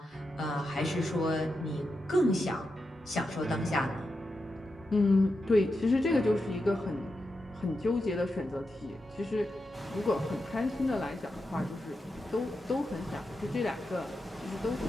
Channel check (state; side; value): normal; both; correlation 0.88